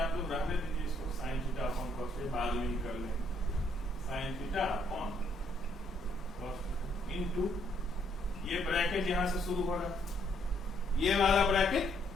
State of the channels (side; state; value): both; normal; correlation 0.70